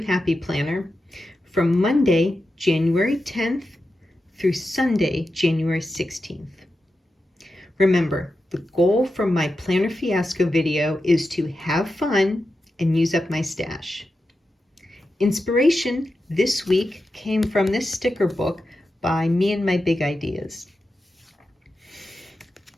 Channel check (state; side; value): normal; both; correlation 0.90